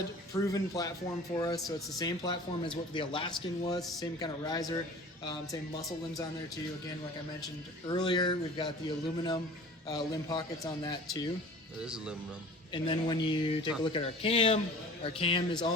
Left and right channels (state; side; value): normal; both; correlation 0.43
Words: proven platform for us. So it's the same platform as what the Alaskan was, same kind of riser, same muscle limbs on there too. Again, like I mentioned earlier, we've got the aluminum limb pockets on that too. It is aluminum. And then when you take a look at our cam is